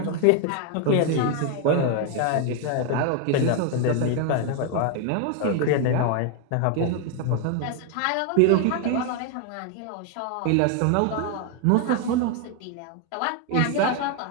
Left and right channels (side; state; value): both; different; correlation 0.01